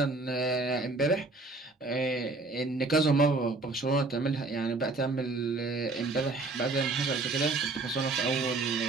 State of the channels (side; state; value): left; quieter; 3.4 dB